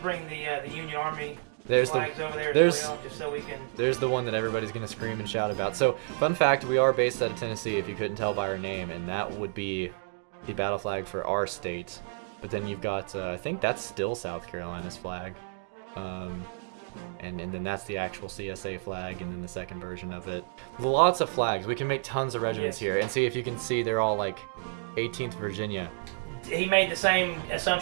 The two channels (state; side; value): silent; left; digital silence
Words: bring the Union Army There's flags over there there's, as well, just so we can. There's the one that everybody's gonna scream and shout about. So, fun fact: we are based out of Tennessee. If you couldn't tell by our name, and that would be the battle flag for our state. But then you've got, I think that's still South Carolina's flag. And then that's the actual CSA flag, and then the second version of it. Lots of flags. We can make tons of regiments here, and see if you can see they're all like 18th Virginia. He made the same